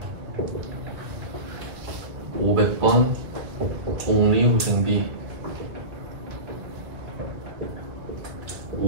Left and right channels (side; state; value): left; late; 1.9 ms